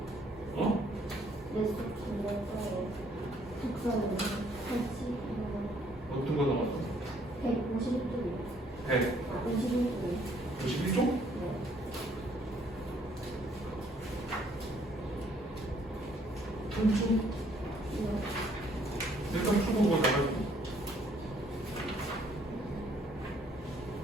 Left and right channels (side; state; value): both; normal; correlation 0.65